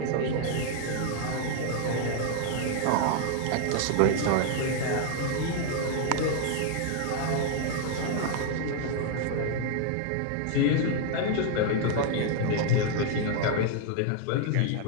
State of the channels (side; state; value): both; different; correlation 0.00